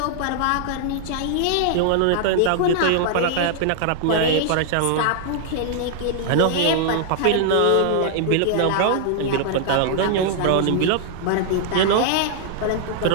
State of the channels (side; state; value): both; different; correlation -0.01